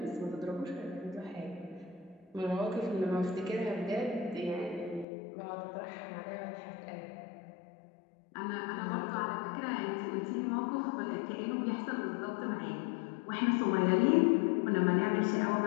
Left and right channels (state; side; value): drops out; right; at 5.1 s